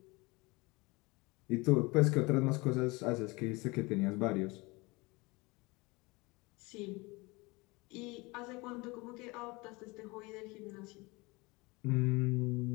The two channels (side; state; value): right; quieter; 24.8 dB